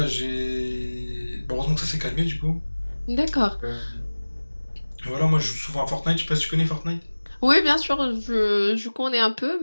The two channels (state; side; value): inverted; both; correlation -1.00